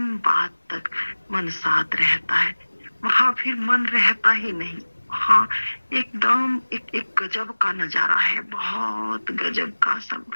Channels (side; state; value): both; inverted; correlation -1.00